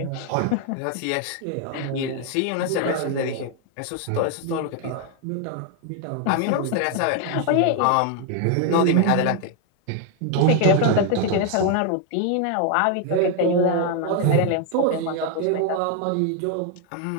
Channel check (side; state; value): both; different; correlation 0.01